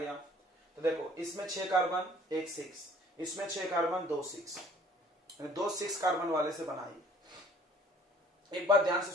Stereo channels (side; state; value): both; normal; correlation 0.55